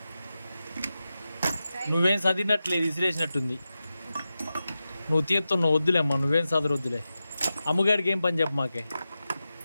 నువ్వేం చదివినట్లేదు, విసిరేసినట్టుంది. నువ్వు తీస్తున్నావు, వద్దులేమ్మా, నువ్వేం చదువు వద్దులే. అమ్మగారికి ఏం పని చెప్పు మాకే.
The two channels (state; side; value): inverted; both; correlation -0.92